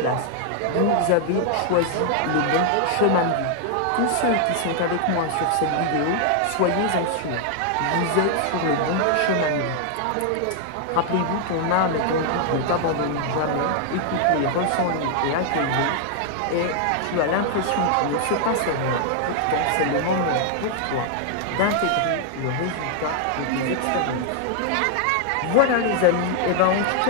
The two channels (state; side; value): different; both; correlation 0.00